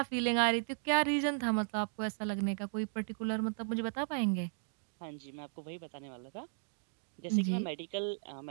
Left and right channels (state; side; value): silent; left; digital silence